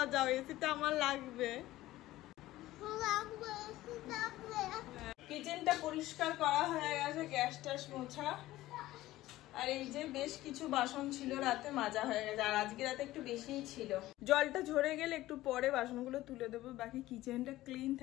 যাও, এসিটা আমার লাগবে। কিচেনটা পরিষ্কার করা হয়ে গেছে, গ্যাস ট্যাস মোছা, আর এই যে বেশ কিছু বাসন ছিল রাতে মাজা হয়ে গেছে, আর আজকে রাতে একটু বেশিই ছিল। জলটা ঝরে গেলে একটু পরে বাসনগুলো তুলে দেবো। বাকি কিচেনটা ক্লিন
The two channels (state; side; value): quieter; right; 16.2 dB